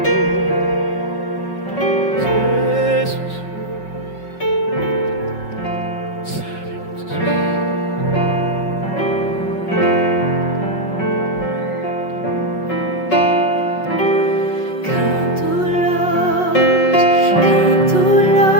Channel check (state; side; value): late; right; 5.7 ms